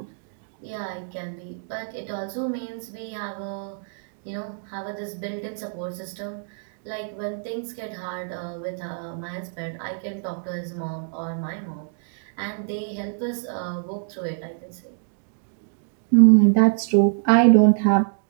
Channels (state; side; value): silent; left; digital silence